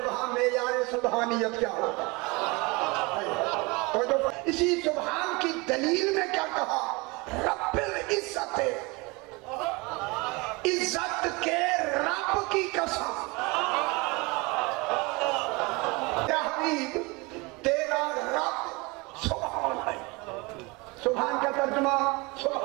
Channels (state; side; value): quieter; left; 26.1 dB